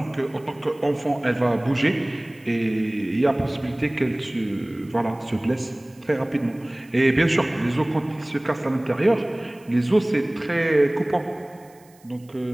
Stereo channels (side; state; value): right; noise; hiss, 29 dB below the sound